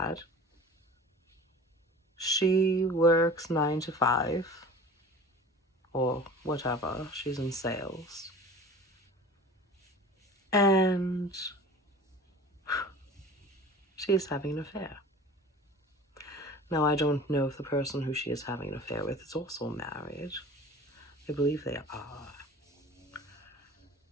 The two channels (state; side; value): normal; both; correlation 0.40